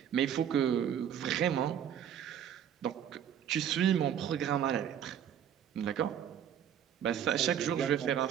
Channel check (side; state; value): left; quieter; 9.3 dB